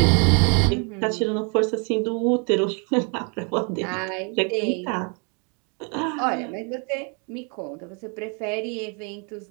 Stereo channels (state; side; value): quieter; left; 36.5 dB